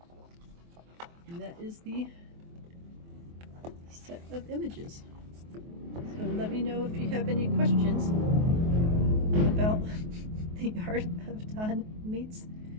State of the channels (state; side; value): late; left; 23 ms